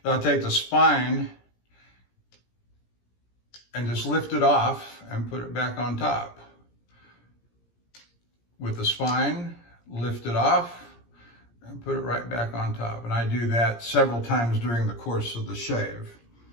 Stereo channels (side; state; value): right; late; 17 ms